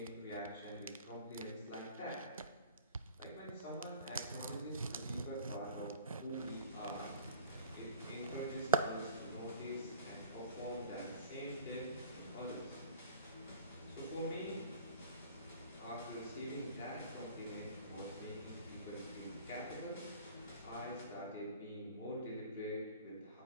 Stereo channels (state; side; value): inverted; both; correlation -0.47